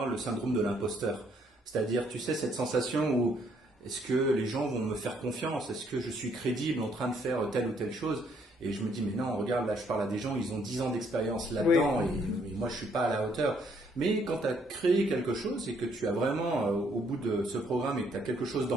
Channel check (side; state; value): both; normal; correlation 0.68